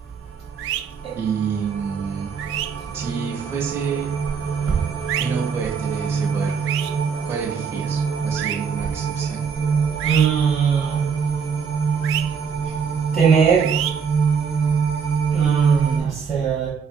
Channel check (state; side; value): quieter; left; 6.2 dB